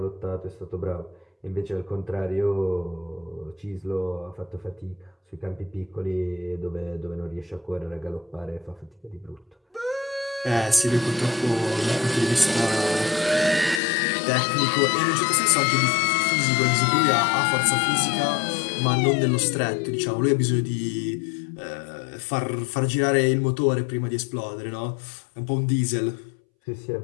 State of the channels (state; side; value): drops out; right; at 13.8 s